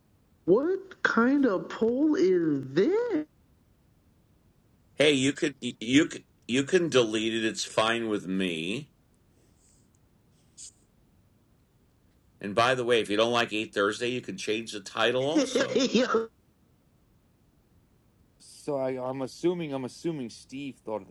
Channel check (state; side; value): identical; both; correlation 1.00